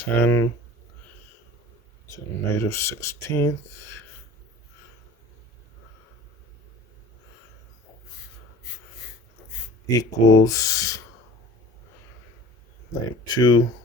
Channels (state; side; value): normal; both; correlation 0.42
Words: to the negative 16th equals negative